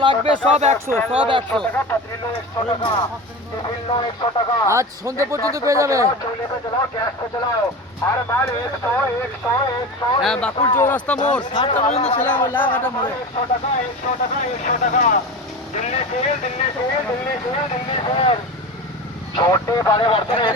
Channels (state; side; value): normal; both; correlation 0.28